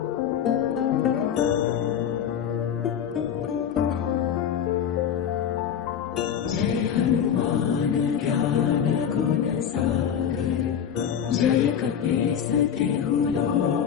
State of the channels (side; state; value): right; quieter; 8.5 dB